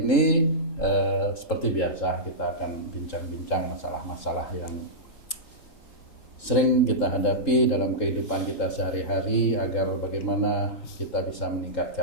seperti biasa kita akan bincang-bincang masalah-masalah yang sering kita hadapi dalam kehidupan kita sehari-hari agar bagaimana kita bisa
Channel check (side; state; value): right; late; 3.8 ms